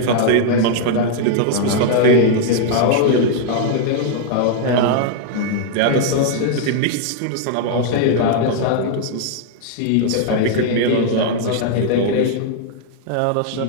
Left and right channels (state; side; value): different; both; correlation -0.01